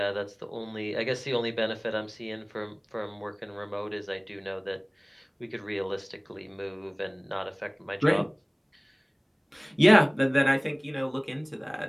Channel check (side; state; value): both; identical; correlation 1.00